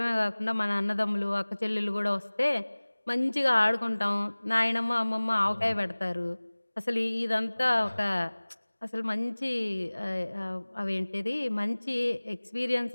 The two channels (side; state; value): both; inverted; correlation -1.00